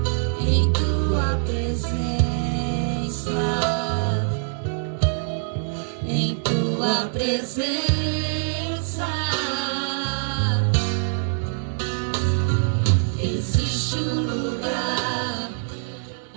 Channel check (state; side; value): silent; left; digital silence